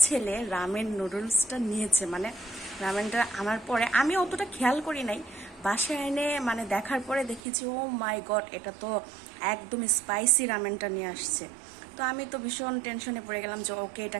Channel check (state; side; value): drops out; left; at 7.4 s